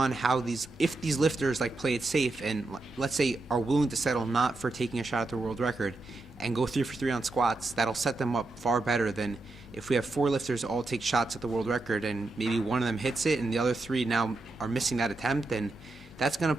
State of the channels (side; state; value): left; quieter; 3.2 dB